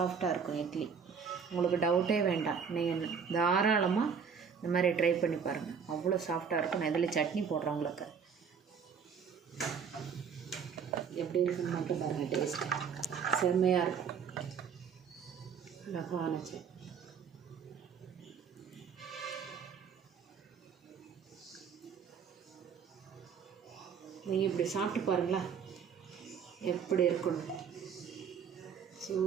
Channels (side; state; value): left; quieter; 6.5 dB